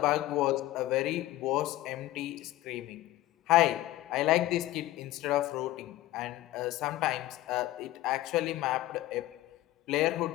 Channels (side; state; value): right; quieter; 16.0 dB